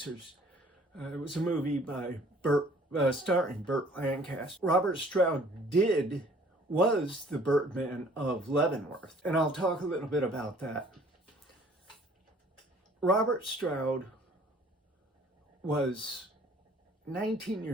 It was a movie by starring Burt Lancaster. Robert Stroud was the Birdman of Leavenworth, and I'll talk a little bit about that. Robert Stroud was 19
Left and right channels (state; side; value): normal; both; correlation 0.55